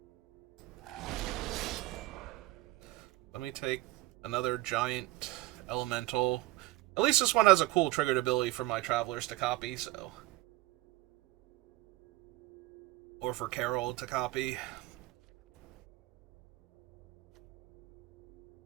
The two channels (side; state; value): left; quieter; 18.7 dB